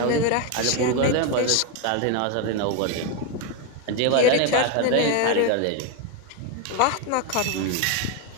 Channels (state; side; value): different; both; correlation 0.01